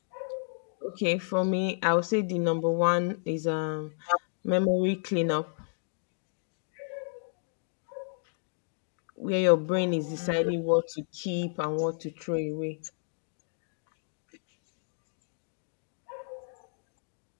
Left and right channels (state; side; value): silent; right; digital silence